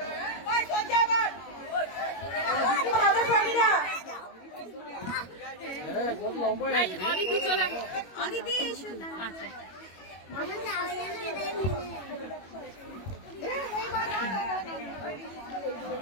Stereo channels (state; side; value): late; right; 21 ms